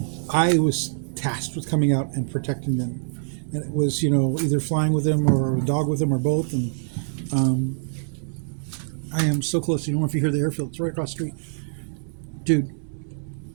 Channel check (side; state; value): left; silent; 62 dB below the other